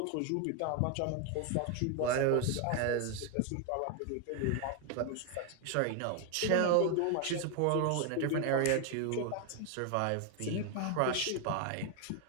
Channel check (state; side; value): different; both; correlation 0.01